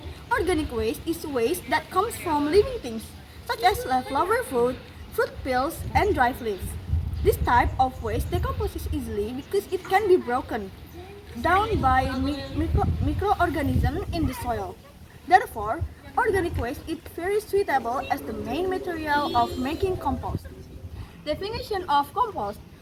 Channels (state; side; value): identical; both; correlation 1.00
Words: Organic waste is waste that comes from living things, such as leftover food, fruit peels, and dry leaves. This type of waste decomposes easily because it can be broken down by microorganisms in the soil. Therefore, organic waste is very suitable as the main material of making compost. Definition of compost.